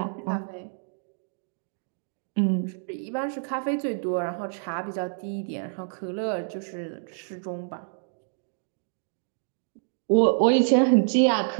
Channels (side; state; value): left; silent; digital silence